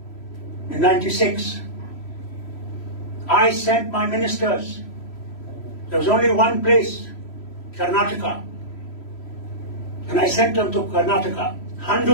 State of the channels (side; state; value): right; late; 3.1 ms